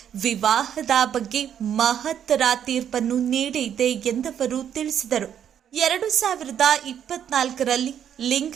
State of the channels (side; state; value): left; quieter; 9.2 dB